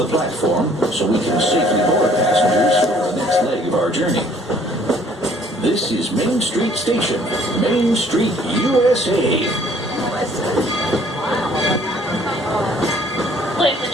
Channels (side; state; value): both; normal; correlation 0.59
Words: platform so we can safely board passengers for the next leg of our journey. This is Main Street Station, Main Street, USA. Ladies and